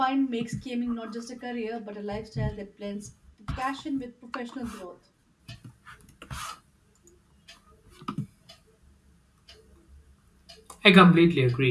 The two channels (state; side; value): identical; both; correlation 1.00